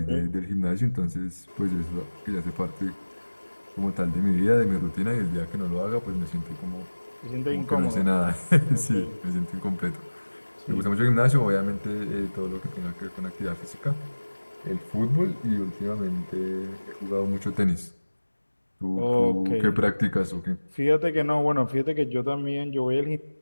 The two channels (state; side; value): inverted; both; correlation -1.00